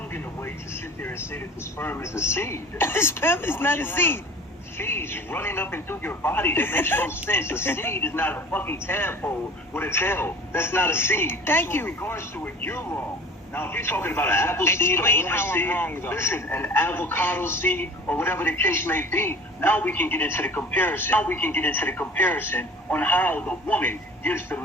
in a way to sit there and say that the sperm is a seed. The sperm is not a seed. Seeds running up and through your body. That makes no sense. A seed is not a fucking tadpole with a tail. That's not a seed. Thank you. In regards to it, you're wrong. Now, if you're talking about an apple seed, or orange seed, listen, an avocado seed, or whatever the case may be, now we can get into the comparison. On how the woman gives the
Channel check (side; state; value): both; normal; correlation 0.43